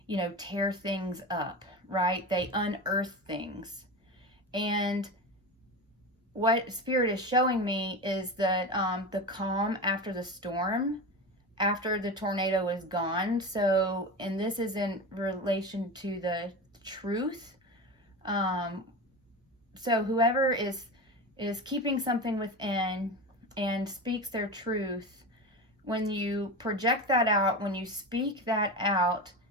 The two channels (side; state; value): both; normal; correlation 0.24